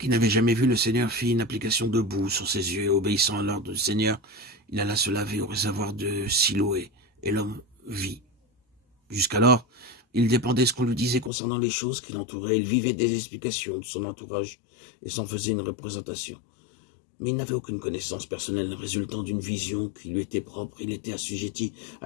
n'avait jamais vu le Seigneur fit une application de boue sur ses yeux et obéissant à l'ordre du Seigneur, il alla se laver au réservoir de Siloé et l'homme vit. Jusqu'alors, il dépendait ce qu'on lui disait concernant les choses qui l'entouraient. Il vivait des explications de son entourage et s'en faisait une représentation. Mais il n'avait aucune connaissance personnelle résultant d'une vision qui lui était propre. Il était assujetti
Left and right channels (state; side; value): drops out; right; at 11.3 s